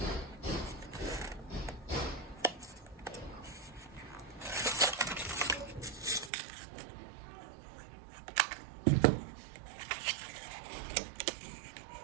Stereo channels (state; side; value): drops out; left; at 6.3 s